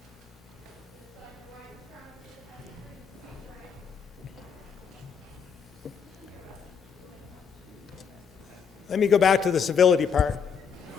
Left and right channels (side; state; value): right; quieter; 6.6 dB